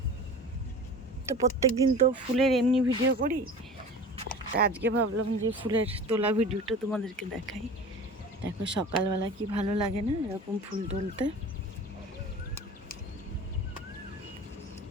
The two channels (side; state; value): both; normal; correlation 0.37